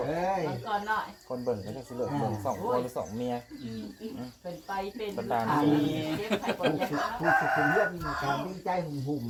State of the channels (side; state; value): both; identical; correlation 1.00